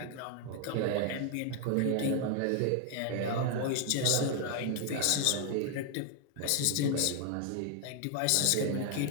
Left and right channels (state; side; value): different; both; correlation 0.00